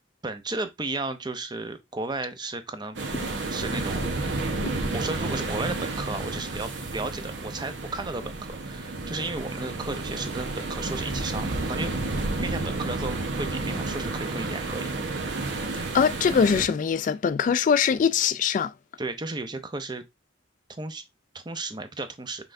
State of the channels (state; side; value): normal; both; correlation 0.29